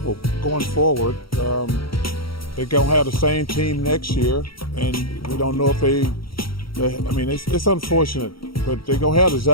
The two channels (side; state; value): right; late; 0.74 ms